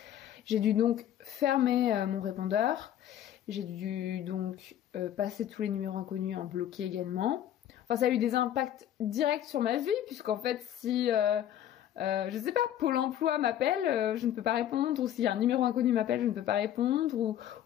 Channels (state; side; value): quieter; right; 11.2 dB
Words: J'ai dû donc fermer mon répondeur. J'ai dû donc passer tous les numéros inconnus en bloqué également. Enfin, ça a eu des impacts directs sur ma vie, puisqu'en fait, si, je sais pas, Pôle emploi m'appelle, je ne peux pas répondre, ou si un numéro inconnu m'appelle, je ne peux pas répondre,